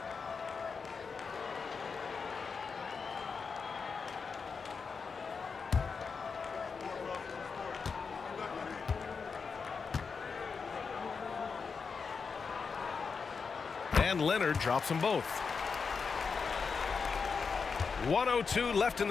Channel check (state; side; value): quieter; right; 5.3 dB